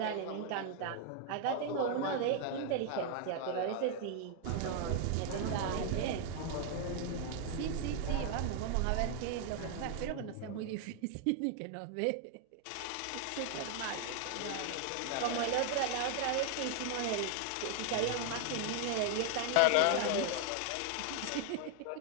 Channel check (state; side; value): different; both; correlation 0.00